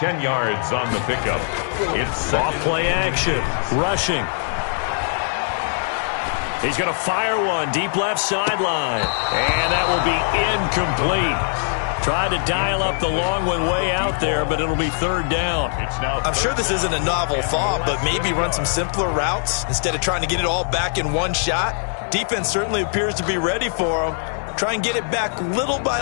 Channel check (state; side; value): silent; right; digital silence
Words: yards on the pickup. It's off play action, rushing. He's going to fire one deep left sideline. And that will be incomplete. Tried to dial up the long one way out there, but it'll be third down. I'm sure this isn't a novel thought, but maybe run some simpler routes instead of trying to get it all back in one shot. Defense certainly appears to be ready for them. Try and get it back little by